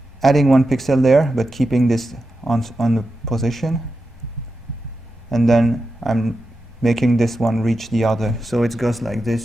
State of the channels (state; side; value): normal; both; correlation 0.90